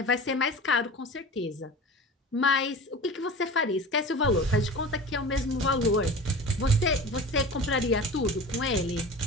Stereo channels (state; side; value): normal; both; correlation 0.35